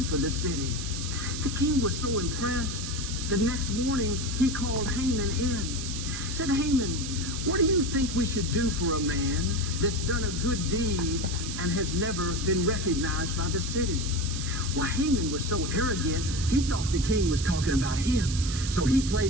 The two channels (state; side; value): noise; right; hiss, 7 dB below the sound